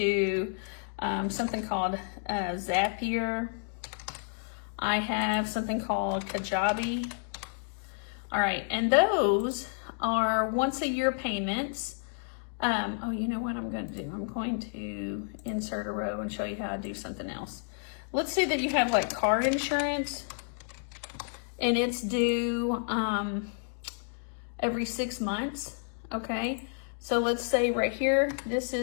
something called Zapier. I have something called Kajabi. All right, and those are once a year payments. Oh, you know what I'm going to do? I'm going to insert a row and show you how I do something else. Let's say that you have like car insurance and it's due every 6 months, okay? So let's say right here, this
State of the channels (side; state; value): right; silent; digital silence